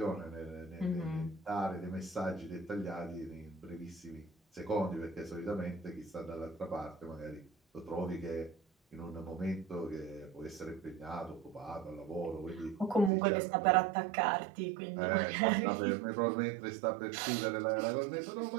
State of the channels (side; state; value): left; drops out; at 13.1 s